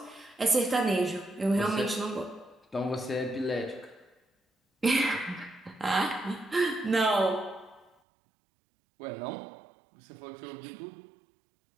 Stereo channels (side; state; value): left; drops out; at 7.9 s